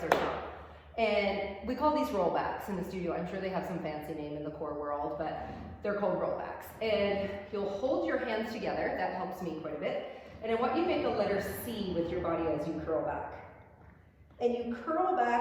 are strong. And we call these rollbacks in the studio. I'm sure they have some fancy name in the core world, but they're called rollbacks. And you'll hold your hands together, that helps me quite a bit. And I want you to make a letter C with your body as you curl back. And you curl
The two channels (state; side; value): identical; both; correlation 1.00